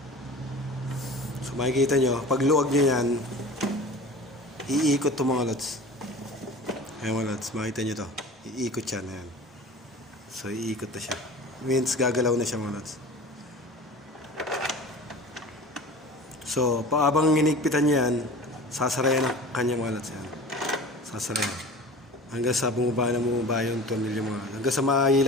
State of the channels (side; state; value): both; normal; correlation 0.38